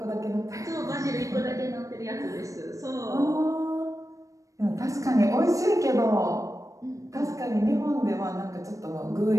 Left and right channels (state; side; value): late; left; 0.16 ms